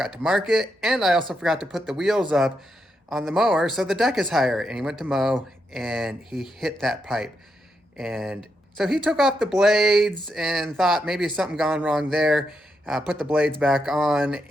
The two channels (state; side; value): normal; both; correlation 0.82